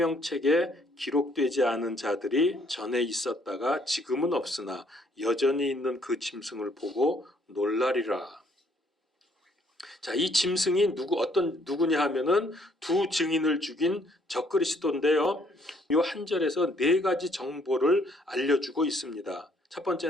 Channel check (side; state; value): both; normal; correlation 0.66